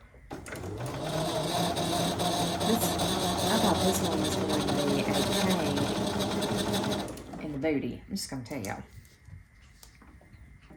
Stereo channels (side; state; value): both; identical; correlation 1.00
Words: I thought this one was going to be a pain in the booty. I'm just going to tell y'all.